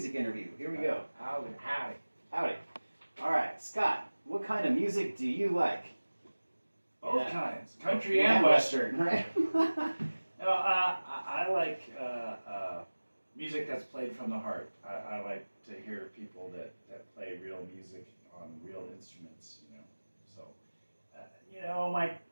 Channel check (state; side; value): inverted; both; correlation -1.00